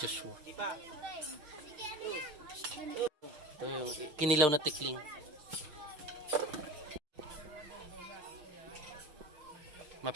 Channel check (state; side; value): late; left; 6.6 ms